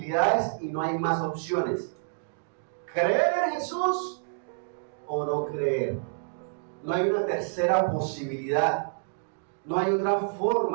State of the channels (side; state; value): left; silent; digital silence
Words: y no hay más opciones: creer en Jesús o no creer. No hay una tercera posibilidad. No hay otra